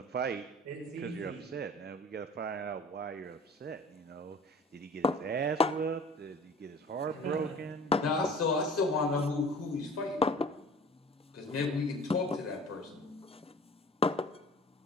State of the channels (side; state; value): both; normal; correlation 0.45